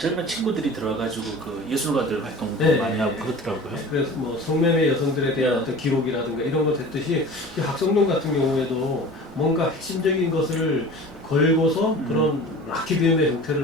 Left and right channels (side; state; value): both; normal; correlation 0.39